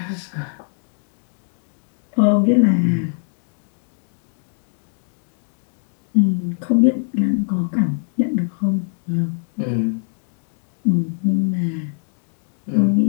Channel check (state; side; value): silent; right; 64 dB below the other